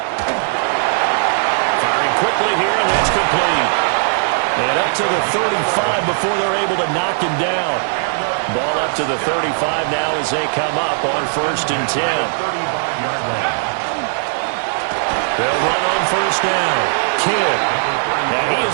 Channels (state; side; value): silent; left; digital silence